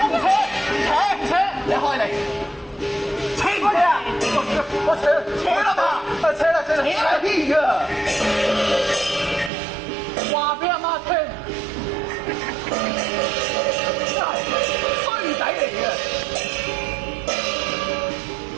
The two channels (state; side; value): drops out; left; at 9.5 s